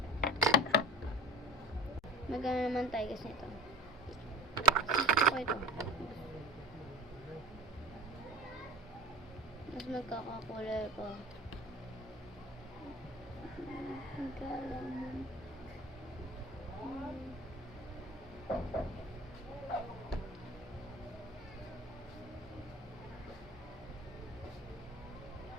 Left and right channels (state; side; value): normal; both; correlation 0.34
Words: Magana naman tayo guys nito. Gusto ko ito. Mas magkakakulay ko. Magkalaman.